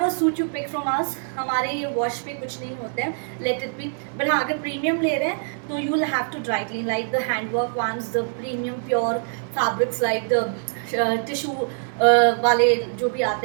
suit you pick from us, हमारे ये वॉश पे कुछ नहीं होते हैं, लेट इट बी। बट हाँ, अगर प्रीमियम ले रहे हैं तो you will have to dry clean like the handwork ones, the premium pure fabrics like the tissue वाले जो भी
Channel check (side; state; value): left; silent; digital silence